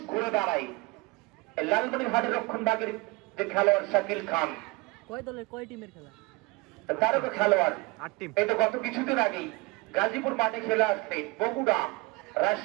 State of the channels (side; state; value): left; quieter; 24.3 dB